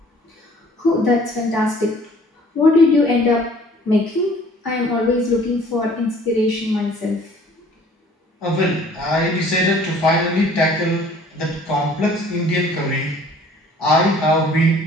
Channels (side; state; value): both; normal; correlation 0.54